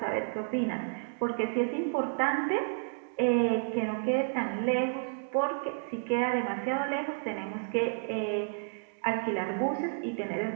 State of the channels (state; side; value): silent; left; digital silence